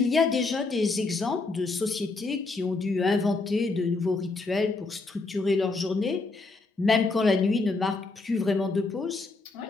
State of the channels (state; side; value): quieter; right; 3.6 dB